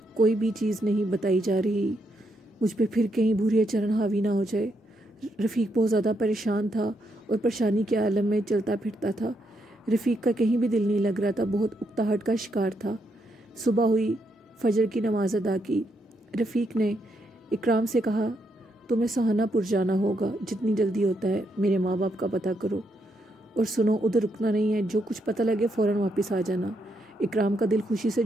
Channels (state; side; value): normal; both; correlation 0.78